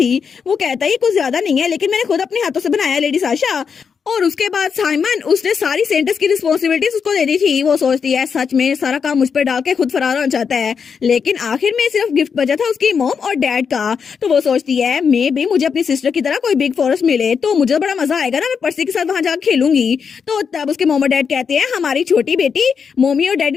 वो कहता है ये कुछ ज्यादा नहीं है लेकिन मैंने खुद अपने हाथों से बनाया है लेडी साशा। और उसके बाद साइमन उसने सारी सेंटर्स की रिस्पॉन्सिबिलिटीज उसको दे दी थी। वो सोचती है सच में सारा काम मुझ पर डाल के खुद फरार होना चाहता है, लेकिन आखिर में सिर्फ गिफ्ट बचा था उसकी मॉम और डैड का। तो वो सोचती है मे भी मुझे अपनी सिस्टर की तरह कोई बिग फॉरेस्ट मिले तो मुझे बड़ा मजा आएगा ना, मैं पर्सी के साथ वहां जाकर खेलूंगी। तो तब उसके मॉम और डैड कहते हैं हमारी छोटी बेटी मम्मी और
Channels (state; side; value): quieter; right; 6.3 dB